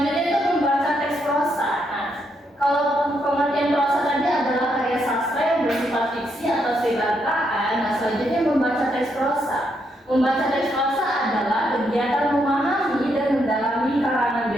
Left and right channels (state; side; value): normal; both; correlation 0.77